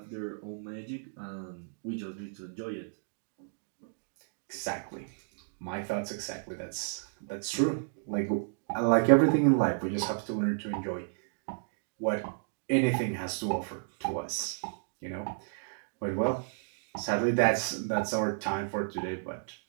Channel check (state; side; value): silent; left; digital silence